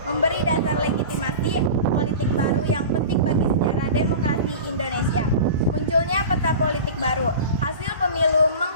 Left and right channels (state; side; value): inverted; both; correlation -0.34